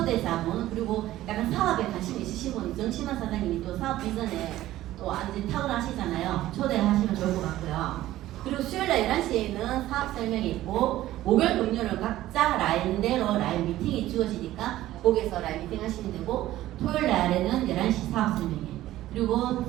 그리고 약간 사업에 관심 있으신 분 정신만 사장님이 또 사업 비전에 또 완전 탁월하시잖아요. 초대하시면 좋을 것 같고요. 그리고 수요일날 11시에는 사업 설명이 있고, 목요일 금요일은 각자 라인대로 라인 미팅이 주어지니까 거기서 라인 미팅 하시면 되고, 토요일 날에는 11시 사업 설명이, 그리고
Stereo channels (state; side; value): quieter; left; 14.9 dB